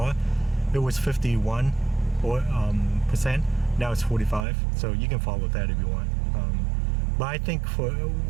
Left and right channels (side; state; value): left; drops out; at 4.5 s